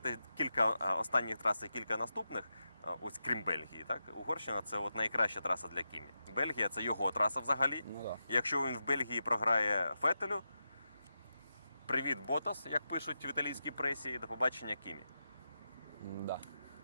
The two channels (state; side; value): inverted; both; correlation -0.88